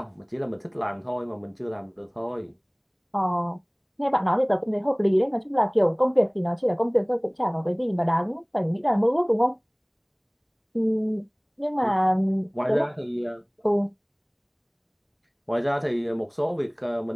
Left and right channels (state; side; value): identical; both; correlation 1.00